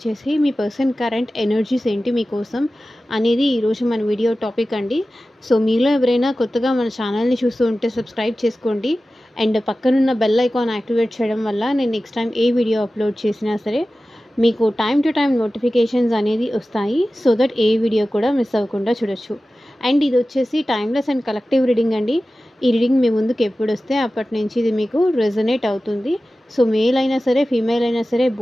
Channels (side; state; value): both; normal; correlation 0.95